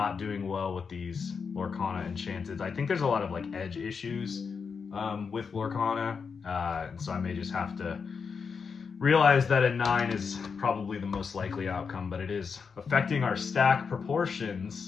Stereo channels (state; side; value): quieter; right; 5.7 dB